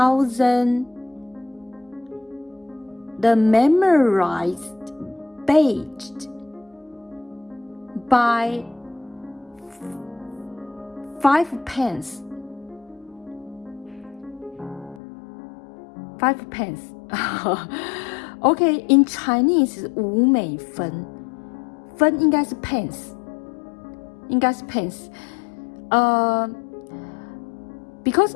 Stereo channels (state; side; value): drops out; right; at 15.0 s